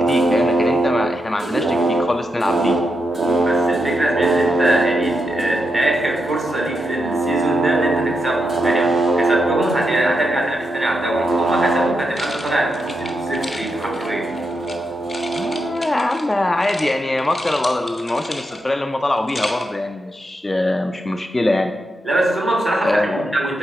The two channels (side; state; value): both; normal; correlation 0.84